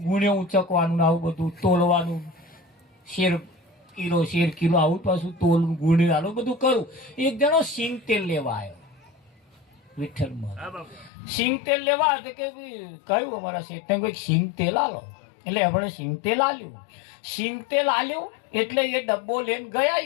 ગુણે ઉચકવાનું આવું બધું તોલવાનું, શેર કિલો આવું પાછું તોલ ગુણી આવું બધું કરું. એક જણો સિંગ તેલ લેવા આવ્યો વિઠ્ઠલમાં. સિંગ તેલ લેવા આવે કે કહ્યું અમારા શેઠને કોઈ સિંગ તેલ આલો. એટલે આપણે સિંગ તેલ આલ્યું. સિંગ તેલ આલ્યું એટલે એ ડબ્બો લઈને ગયા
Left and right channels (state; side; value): drops out; right; at 11.1 s